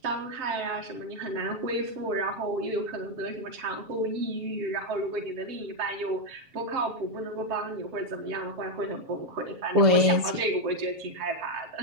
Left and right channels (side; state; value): left; late; 7.3 ms